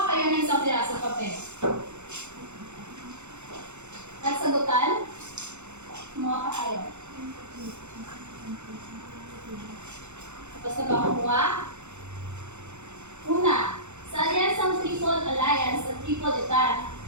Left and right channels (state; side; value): late; left; 0.83 ms